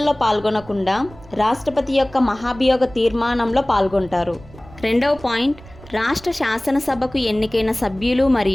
పాల్గొనకుండా రాష్ట్రపతి యొక్క మహాభియోగ తీర్మానంలో పాల్గొంటారు. రెండవ పాయింట్, రాష్ట్ర శాసనసభకు ఎన్నికైన సభ్యులు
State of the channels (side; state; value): right; noise; rumble, 20 dB below the sound